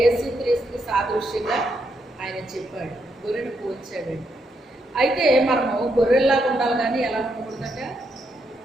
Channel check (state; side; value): normal; both; correlation 0.79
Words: యేసుక్రీస్తుకి సాదృశ్యంగా ఆయన చెప్పాడు, గొర్రెను పోల్చాడండి. అయితే మనము గొర్రెల్లాగా ఉండాలి, కానీ ఎలా ఉండకూడదట,